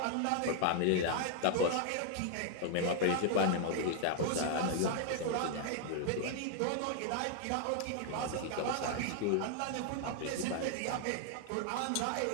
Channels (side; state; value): both; different; correlation 0.00